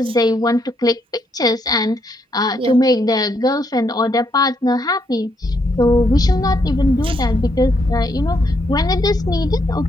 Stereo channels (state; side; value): normal; both; correlation 0.75